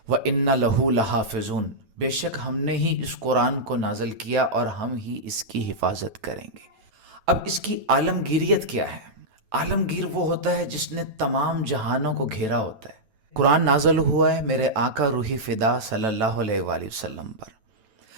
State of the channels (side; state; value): left; late; 9.1 ms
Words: وانا لہ لحافظون، بے شک ہم نے ہی اس قرآن کو نازل کیا اور ہم ہی اس کی حفاظت کریں گے۔ اب اس کی عالمگیریت کیا ہے؟ عالمگیر وہ ہوتا ہے جس نے تمام جہانوں کو گھیرا ہوتا ہے۔ قرآن نازل ہوا ہے میرے آقا روحی فدا صلی اللہ علیہ وآلہ وسلم پر،